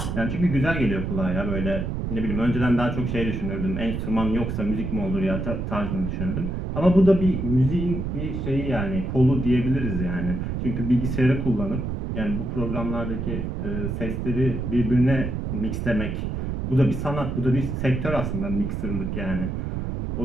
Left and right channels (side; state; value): right; noise; rumble, 3 dB below the sound